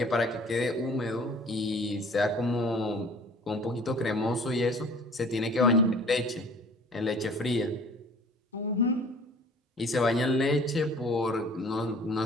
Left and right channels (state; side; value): normal; both; correlation 0.49